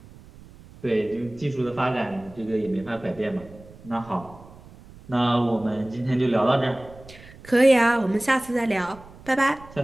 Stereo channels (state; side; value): noise; right; rumble, 21 dB below the sound